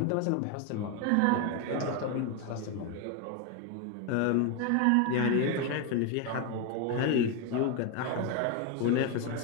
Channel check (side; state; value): both; different; correlation 0.01